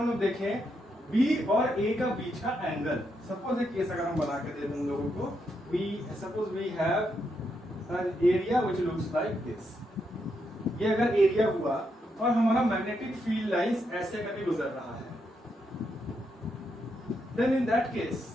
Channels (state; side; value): normal; both; correlation 0.80